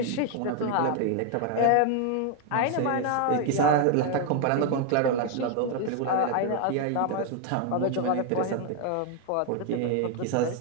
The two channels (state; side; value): different; both; correlation 0.01